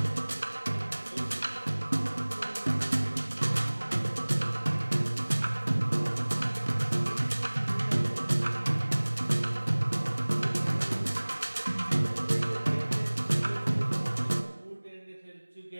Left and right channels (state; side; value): inverted; both; correlation -1.00